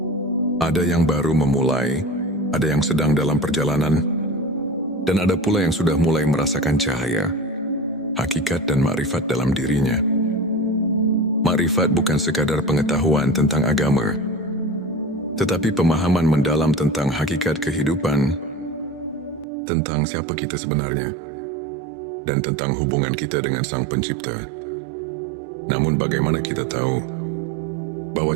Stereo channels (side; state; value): left; drops out; at 19.5 s